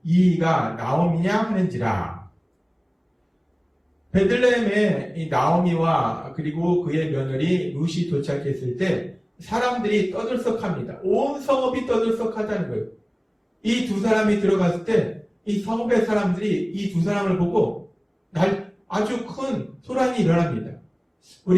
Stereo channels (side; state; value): both; identical; correlation 1.00